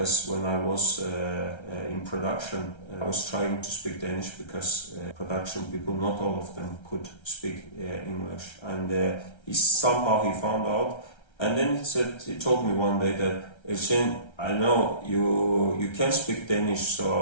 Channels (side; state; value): right; late; 1.3 ms